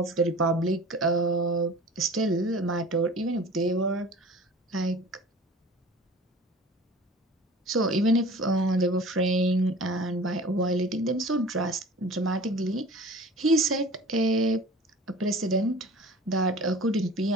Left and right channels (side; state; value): both; normal; correlation 0.43